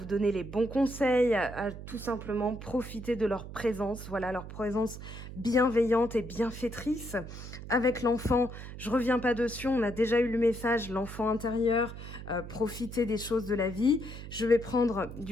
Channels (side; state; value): right; noise; hum, 11 dB below the sound